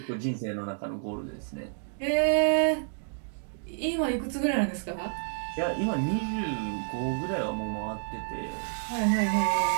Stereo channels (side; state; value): left; silent; digital silence